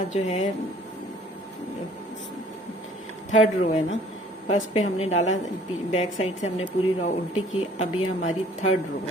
जो है थर्ड रो है ना, फर्स्ट पे हमने डाला, बैक साइड से हमने पूरी रो उल्टी की। अब ये हमारी थर्ड रो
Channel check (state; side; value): normal; both; correlation 0.55